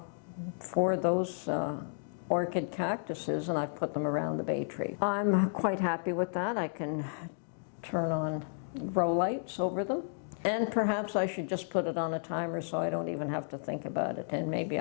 those orchid cactuses, and I've put them around the bay tree. I'm quite happy with that. I can turn on grow lights over them. And perhaps I should just put it on a timer so I don't even have to think about it, and maybe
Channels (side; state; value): right; silent; digital silence